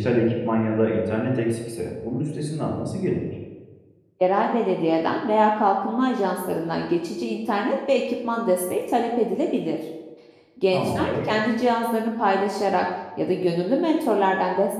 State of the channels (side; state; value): both; identical; correlation 1.00